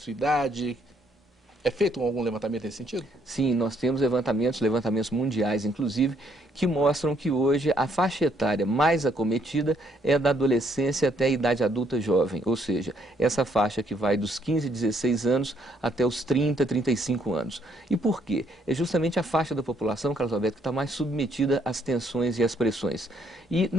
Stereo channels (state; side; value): normal; both; correlation 0.70